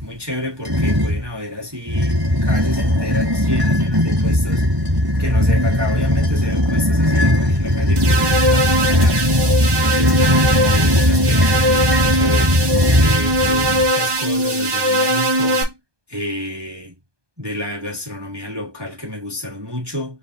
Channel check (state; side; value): late; left; 1.2 ms